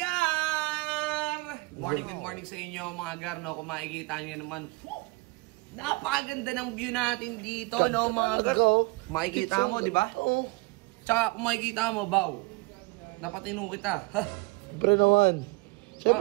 Good morning sa inyo, mga gar, no? Kung makikita nyo naman, napakaganda ng view natin dito, no, mga gar? Makikita mo, di ba? Oo. Tsaka kung makikita mo, Baw, napatino kita. Siyempre naman.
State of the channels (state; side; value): quieter; left; 25.3 dB